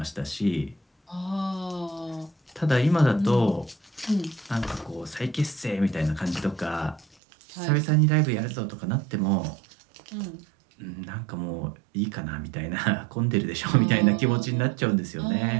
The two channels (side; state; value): left; drops out; at 7.2 s